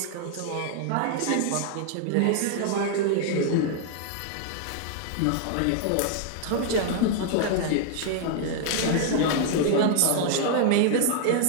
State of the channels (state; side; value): different; both; correlation 0.00